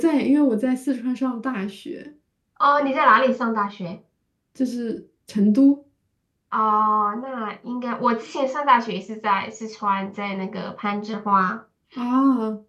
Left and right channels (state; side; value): identical; both; correlation 1.00